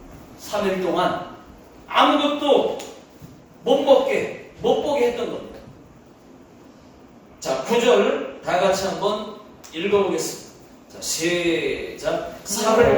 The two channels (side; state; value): both; identical; correlation 1.00